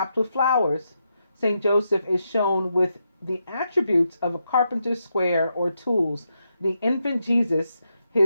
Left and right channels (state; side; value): inverted; both; correlation -0.83